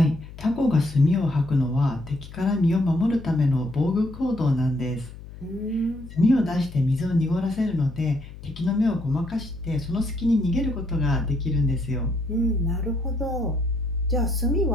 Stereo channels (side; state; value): left; noise; hum, 15 dB below the sound